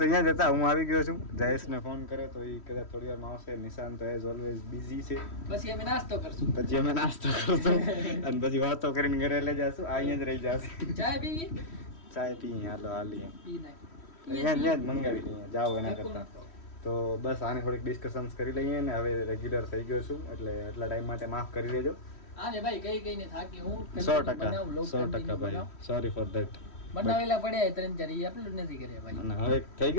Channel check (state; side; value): late; right; 3.1 ms